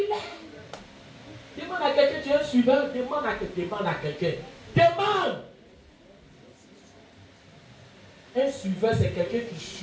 Demande à quelqu'un, tu es un suiveur, demande à quelqu'un. Demande. Un suiveur, c'est quelqu'un qui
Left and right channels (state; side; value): identical; both; correlation 1.00